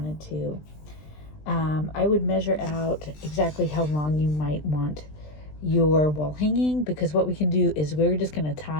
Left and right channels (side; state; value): right; late; 20 ms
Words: to. I would measure out exactly how long you might want your wall hanging, because what we can do is we're just going to